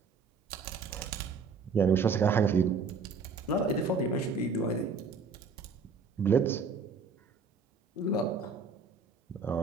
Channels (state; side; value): quieter; left; 4.7 dB